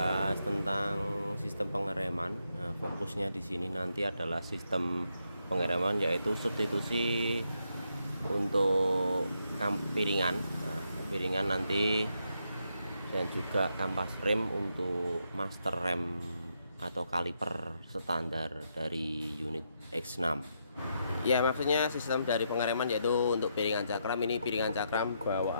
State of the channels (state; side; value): inverted; both; correlation -0.79